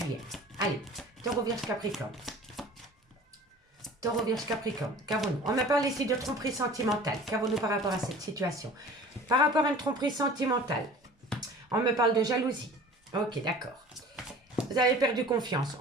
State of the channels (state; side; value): normal; both; correlation 0.44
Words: Allez, taureau, vierge, capricorne. Taureau, vierge, capricorne. Qu'avons-nous? On me parle ici de tromperie sentimentale. Qu'avons-nous par rapport à cette situation? Par rapport à une tromperie sentimentale, on me parle de jalousie. Ok, d'accord. Vous avez perdu confiance.